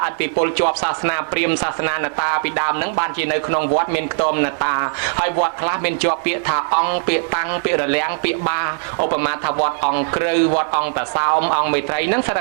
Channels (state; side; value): silent; left; 66 dB below the other